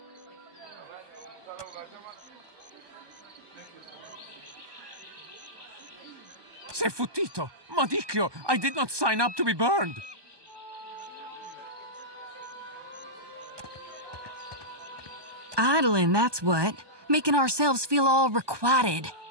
Sei futtito! Madicchio! I did not sign up to be burned! Idling, that's what. Making ourselves feel all requited.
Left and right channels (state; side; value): late; left; 1.2 ms